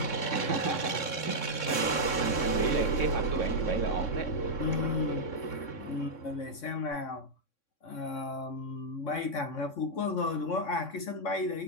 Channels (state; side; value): late; right; 3.6 ms